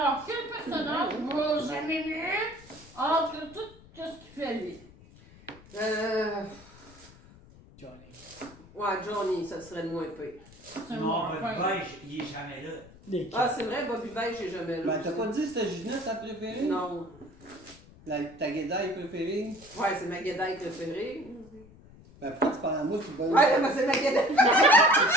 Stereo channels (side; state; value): left; noise; rumble, 22 dB below the sound